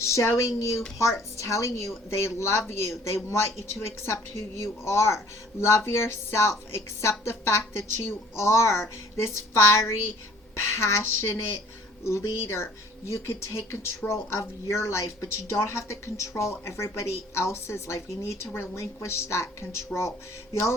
you hearts telling you they love you. They want you to accept who you are. Love yourself. Accept the fact that you are this fiery, passionate leader. You could take control of your life, but you don't have to control everybody else's life. You need to relinquish that control. The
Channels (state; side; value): normal; both; correlation 0.53